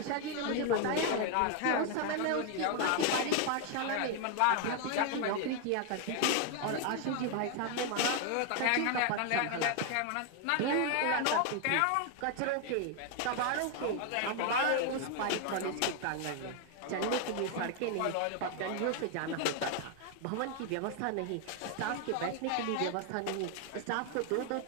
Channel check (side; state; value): both; different; correlation 0.01